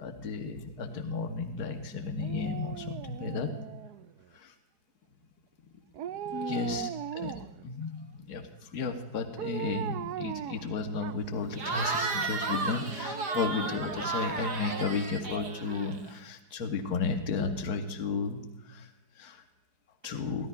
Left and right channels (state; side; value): late; left; 5.0 ms